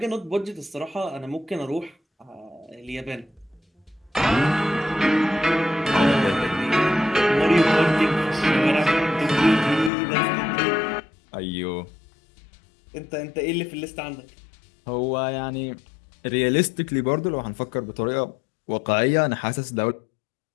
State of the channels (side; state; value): right; drops out; at 9.9 s